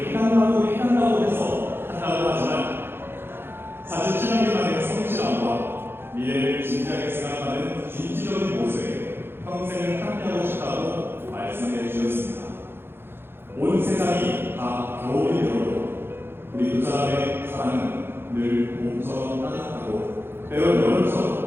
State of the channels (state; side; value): late; left; 0.11 ms